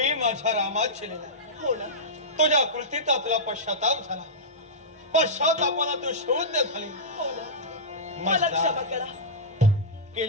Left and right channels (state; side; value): normal; both; correlation -0.14